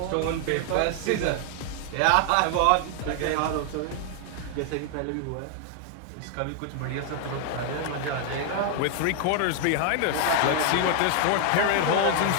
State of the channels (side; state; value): both; different; correlation 0.00